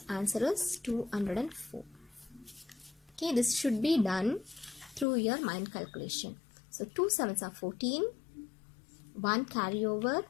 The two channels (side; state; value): right; drops out; at 5.1 s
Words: Answer is 204. Okay, this should be done through your mind calculation. So 2 7s are 14, 1 carry over,